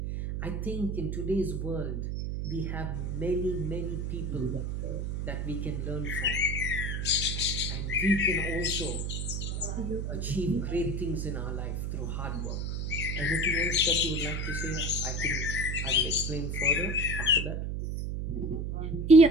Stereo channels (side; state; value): right; noise; hum, 2 dB below the sound